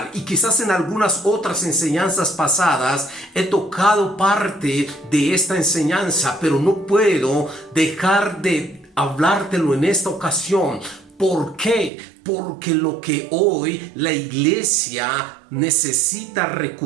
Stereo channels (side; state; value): left; drops out; at 11.9 s